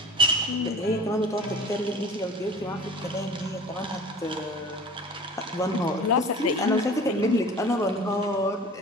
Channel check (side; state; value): both; normal; correlation 0.42